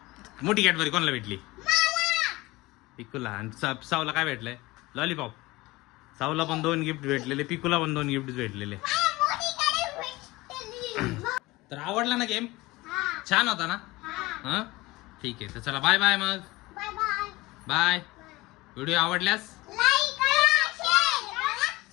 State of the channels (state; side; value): quieter; right; 20.7 dB